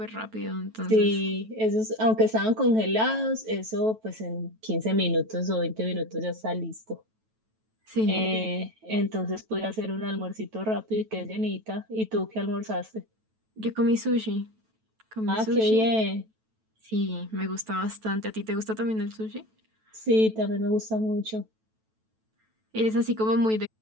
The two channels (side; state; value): left; late; 9.1 ms